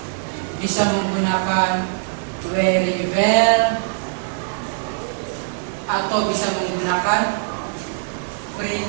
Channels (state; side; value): silent; left; digital silence